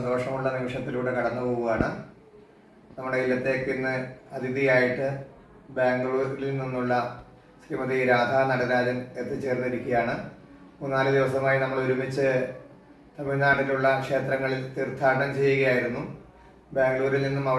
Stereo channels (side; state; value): both; identical; correlation 1.00